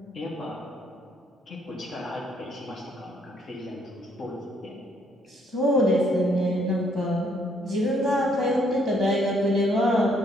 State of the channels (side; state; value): both; normal; correlation 0.68